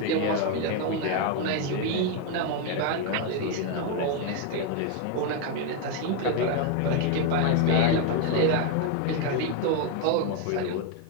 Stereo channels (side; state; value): both; different; correlation 0.01